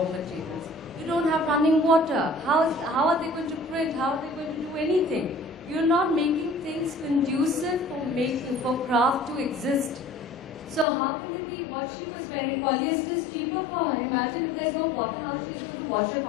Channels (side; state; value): right; drops out; at 10.9 s